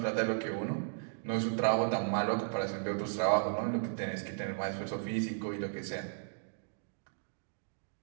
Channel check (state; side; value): silent; left; digital silence